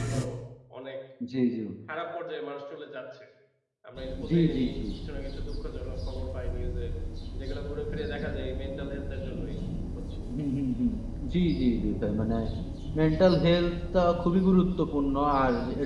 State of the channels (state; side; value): identical; both; correlation 1.00